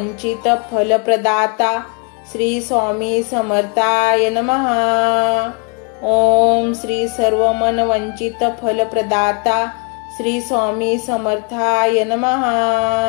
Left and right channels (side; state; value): right; quieter; 34.8 dB